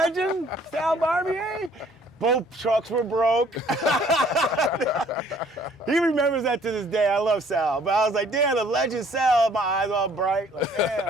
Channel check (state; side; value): normal; both; correlation 0.58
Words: Sal Barbier. Both trucks were broke. He remembers that to this day. I love Sal. But I was like, damn, the legend Sal, my eyes all bright. Like,